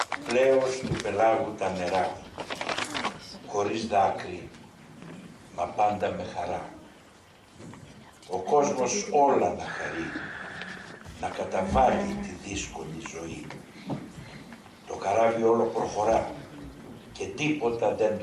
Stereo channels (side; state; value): both; identical; correlation 1.00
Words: Πλέος του πελάγου τα νερά, χωρίς δάκρυ, μα πάντα με χαρά. Ο κόσμος όλα να χαρεί, να καταβάλει τη δύσκολη ζωή. Το καράβι όλο προχωρά και τίποτα δεν